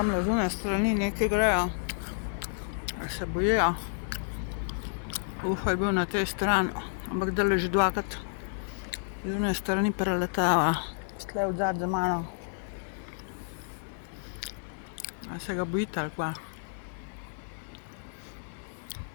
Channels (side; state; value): right; silent; digital silence